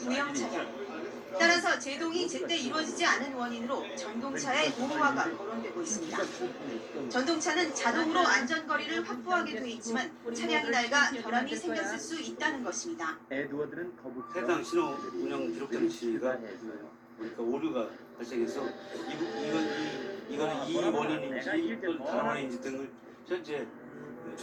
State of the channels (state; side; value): identical; both; correlation 1.00